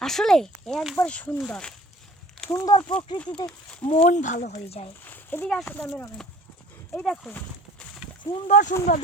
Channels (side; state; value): both; normal; correlation 0.48